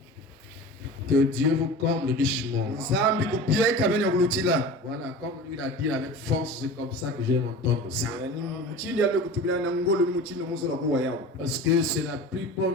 Que Dieu vous comble richement. Voilà, comme lui l'a dit avec force, c'est comme ça que j'aime entendre ça. Parce que c'est la plus bonne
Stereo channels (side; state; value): both; normal; correlation 0.35